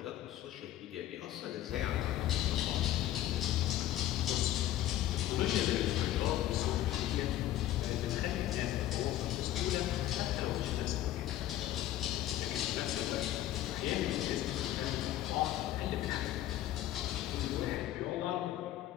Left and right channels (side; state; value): right; quieter; 13.3 dB